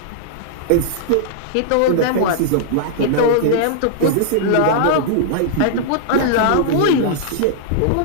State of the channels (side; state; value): both; different; correlation -0.01